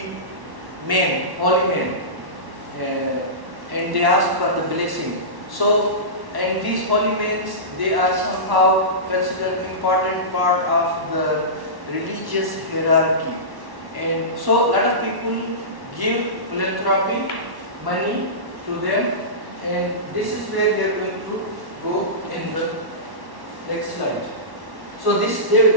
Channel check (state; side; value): late; left; 1.1 ms